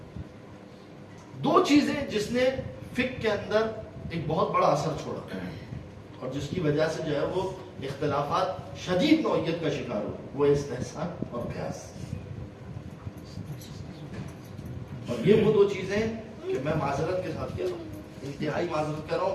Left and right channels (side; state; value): both; identical; correlation 1.00